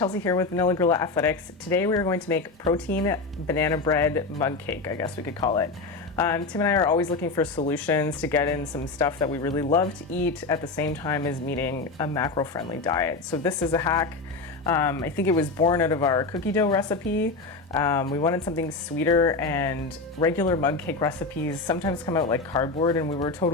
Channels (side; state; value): right; quieter; 3.7 dB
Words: here with Vanilla Gorilla Athletics. Today we are going to make protein banana bread mug cake, I guess we could call it. Tim and I are always looking for solutions to get in some stuff that we really love to eat at the same time as meeting a macro-friendly diet. So this is a hack. I think it was born out of our cookie dough recipe. We wanted something sweeter, and regular mug cake recipes sometimes come out like cardboard, and we were